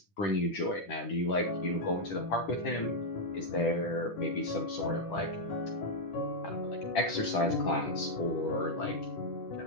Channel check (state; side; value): late; right; 10 ms